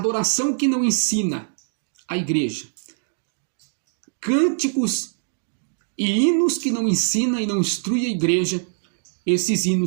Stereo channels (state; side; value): silent; left; digital silence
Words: que não ensina a igreja. Cânticos e hinos que não ensina e não instrui a igreja, esses